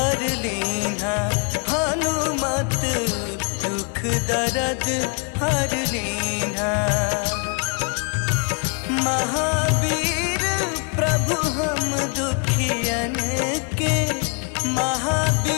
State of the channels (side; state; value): right; quieter; 37.5 dB